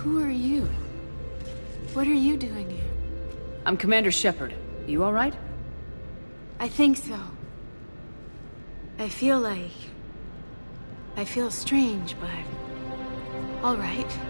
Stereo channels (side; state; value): both; inverted; correlation -1.00